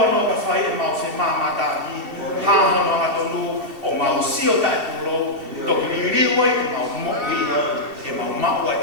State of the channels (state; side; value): late; left; 2.7 ms